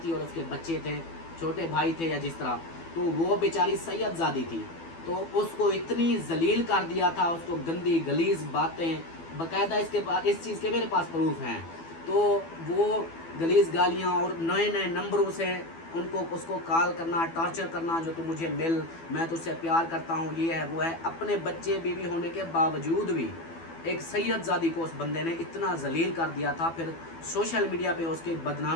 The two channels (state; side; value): late; right; 12 ms